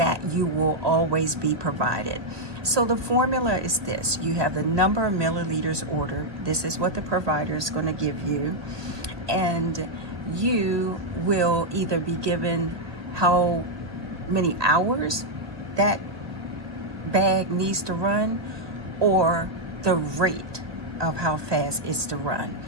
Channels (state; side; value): late; left; 1.0 ms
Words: you will always be provided. So the formula is this: you have the number of milliliters ordered. This is what the provider is going to give you, and you will either be given how many hours that bag needs to run or the rate of how fast it's to run.